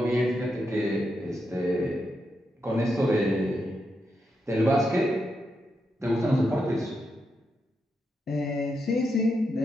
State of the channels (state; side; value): normal; both; correlation 0.84